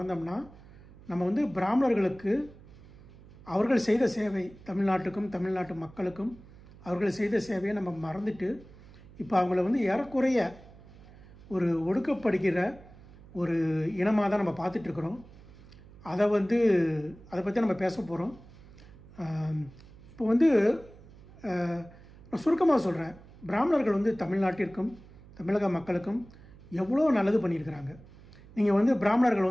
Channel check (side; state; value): right; noise; hum, 21 dB below the sound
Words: நம்ம பிராமணர்களுக்கு அவர்கள் செய்த சேவை, தமிழ்நாட்டுக்கும் தமிழ்நாட்டு மக்களுக்கும் அவர்கள் செய்த சேவையை நம்ம மறந்துட்டு இப்போ அவங்கள ஏறக்குறைய ஒரு ஒடுக்கப்படுகிற ஒரு இனமாக தான் நம்ம பார்த்துட்ருக்குறோம். அதை பற்றி நம்ம பேச போகிறோம். இப்போ நான் சுருக்கமாக சொல்கிறேன். பிராமணர்கள் தமிழ்நாட்டிற்கும் தமிழக மக்களுக்கும் எவ்வளோ நல்லது பண்ணியிருக்கிறாங்க. நீங்கள்